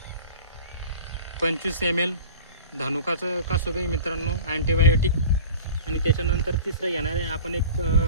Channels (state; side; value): inverted; both; correlation -0.39